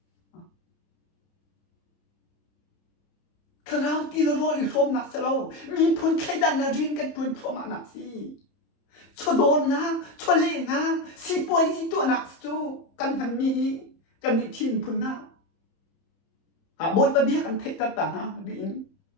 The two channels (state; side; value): late; right; 30 ms